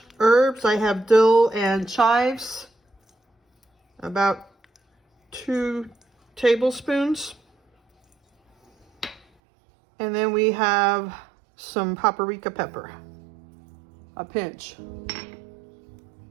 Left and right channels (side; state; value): left; drops out; at 9.2 s